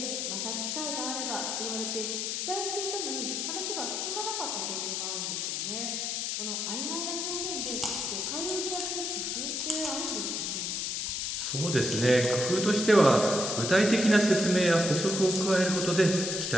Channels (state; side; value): noise; left; hiss, 1 dB below the sound